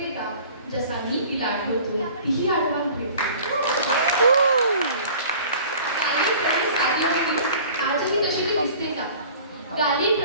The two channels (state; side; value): inverted; both; correlation -0.46